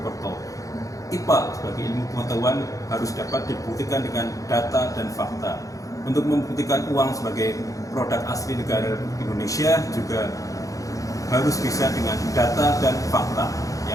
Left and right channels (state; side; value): late; right; 0.16 ms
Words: IPA sebagai ilmu pengetahuan harus dapat dibuktikan dengan data dan fakta. Untuk membuktikan uang sebagai produk asli negara Indonesia juga harus bisa dengan data dan fakta.